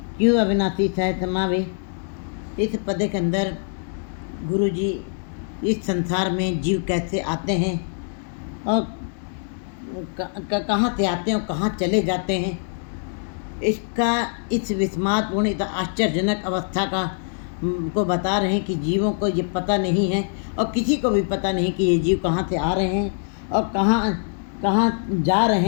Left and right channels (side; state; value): right; silent; digital silence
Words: क्यों अविनाशी सह समावे। इस पद के अंदर गुरु जी इस संसार में जीव कैसे आते हैं और कहाँ से आते हैं और कहाँ चले जाते हैं, इसका इस विस्मातपूर्ण इतना आश्चर्यजनक अवस्था का को बता रहे हैं कि जीवों को ये पता नहीं है और किसी को भी पता नहीं कि ये जीव कहाँ से आ रहे हैं और कहाँ जा